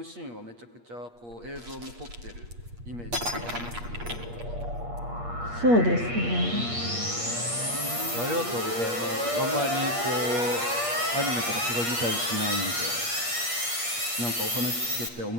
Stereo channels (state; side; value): late; left; 8.5 ms